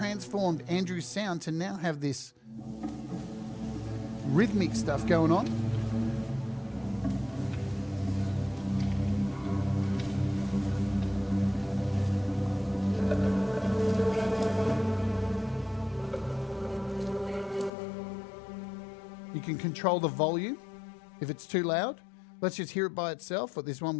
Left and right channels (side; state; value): right; drops out; at 17.7 s